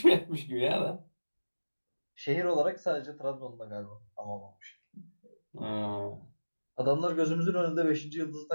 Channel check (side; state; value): both; inverted; correlation -1.00